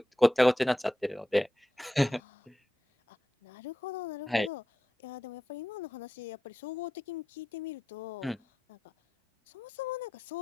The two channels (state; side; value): normal; both; correlation 0.89